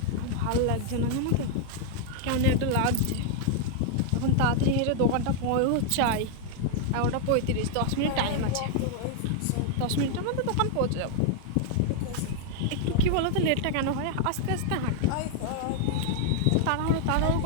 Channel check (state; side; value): different; both; correlation 0.00